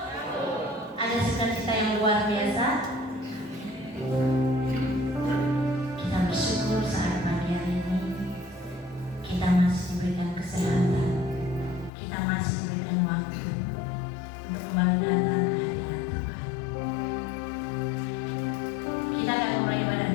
Ada sukacita yang luar biasa. Kita bersyukur saat pagi hari ini kita masih diberikan kesehatan, kita masih diberikan waktu untuk kembali datang ke hadirat Tuhan. Kita akan memulai ibadah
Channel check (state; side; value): drops out; right; at 11.9 s